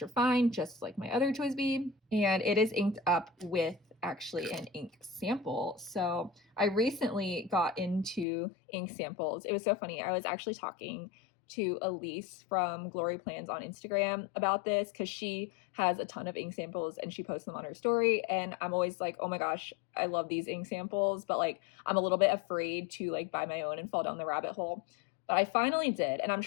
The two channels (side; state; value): right; drops out; at 8.2 s